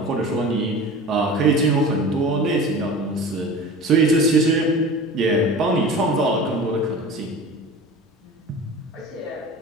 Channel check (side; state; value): both; normal; correlation 0.36